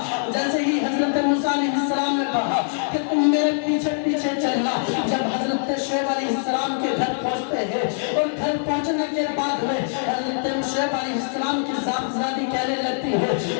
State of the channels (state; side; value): silent; right; digital silence